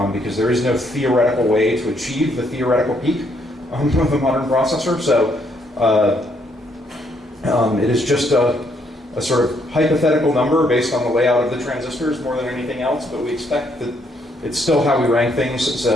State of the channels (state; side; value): normal; both; correlation 0.71